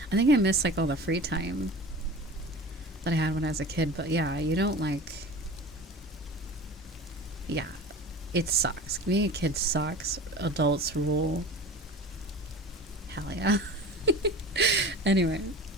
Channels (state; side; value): normal; both; correlation 0.36